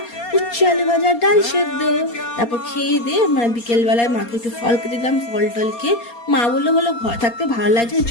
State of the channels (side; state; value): right; late; 4.3 ms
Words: উচ্ছে আলু ভাজা, ডাল সেদ্ধ। তারপর খেয়ে দিয়ে মানে বিকেলবেলায় মাকে একটু ফল কেটে দিলাম। ফল টল খেয়ে মা বললো ঘর থাকতে ভালো লাগছে,